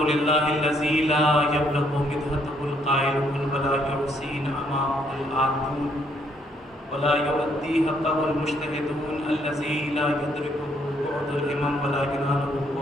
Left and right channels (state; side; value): normal; both; correlation 0.70